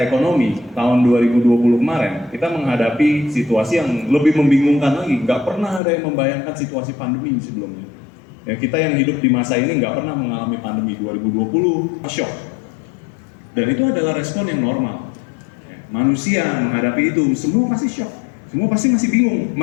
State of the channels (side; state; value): right; drops out; at 5.8 s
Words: ekonomi, tahun 2020 kemarin, kita menghadapi situasi yang lebih membingungkan lagi. Nggak pernah ada yang membayangkan situasi pandemi sebelumnya. Ya, kita yang hidup di masa ini nggak pernah mengalami pandemi. 2020, shock. Dan itu adalah respon yang normal. Ya, manusia menghadapi itu, semua pasti shock. Semua pasti masih bingung,